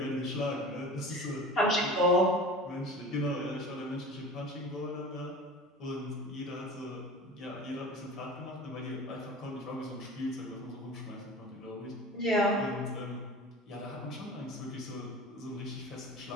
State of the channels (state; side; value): normal; both; correlation 0.38